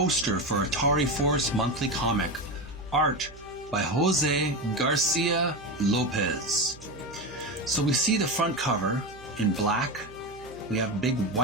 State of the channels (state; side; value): noise; right; hum, 20 dB below the sound